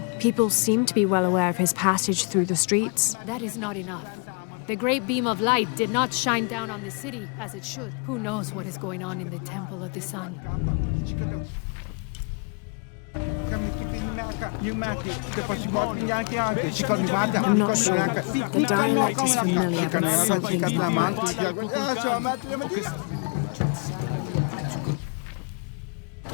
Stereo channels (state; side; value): quieter; right; 37.8 dB